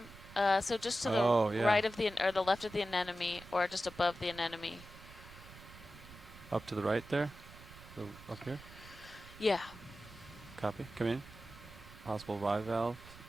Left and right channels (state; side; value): noise; right; rumble, 18 dB below the sound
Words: So just to the right of or the left of the anemone, or just above the anemone. Up to the right there? Up here? Yeah. Copy. Come in. Possible bivalves